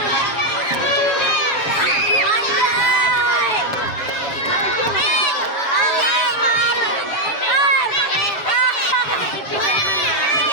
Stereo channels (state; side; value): late; right; 6.9 ms